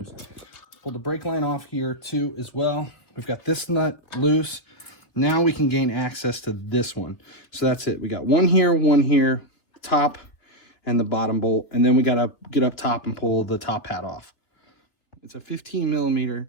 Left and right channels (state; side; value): late; right; 3.5 ms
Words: Pull the brake line off here too as well. We've got this nut loose. Now we can gain access to this one. So that's it. We got one here, top and the bottom bolt. And then we gotta get up top and pull the top hat off. It's a 15